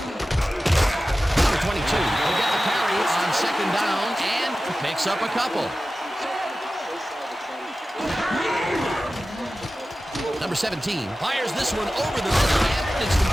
Number 22 will get the carry on second down and picks up a couple. Number 17 fires this one over the middle, and it's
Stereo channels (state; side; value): normal; both; correlation 0.95